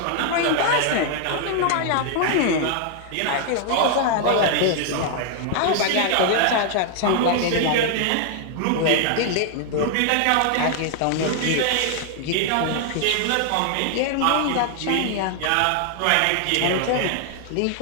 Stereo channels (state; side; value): different; both; correlation 0.00